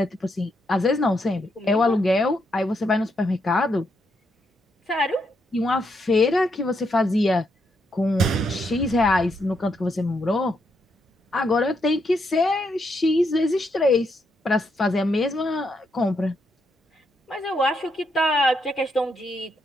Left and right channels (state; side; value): normal; both; correlation 0.79